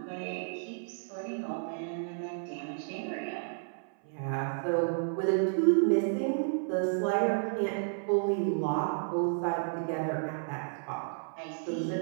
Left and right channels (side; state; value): left; silent; 56 dB below the other